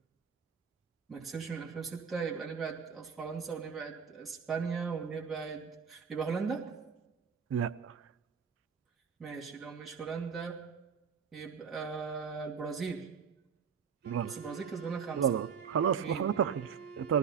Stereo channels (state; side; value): quieter; left; 6.7 dB